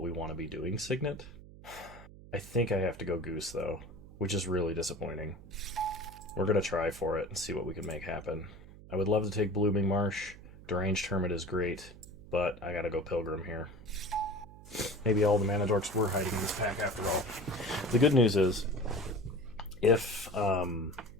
we want to be doing signet. I think I have to go Goose, though, which is really disappointing. We're going to try for it and see what we can make happen. I would love to take Blooming Marsh. Deranged Hermit is great, but I gotta go Pilgrim here. Maybe all the mana dorks were hiding in this pack after all. The good news is, if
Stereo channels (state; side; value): noise; right; hum, 18 dB below the sound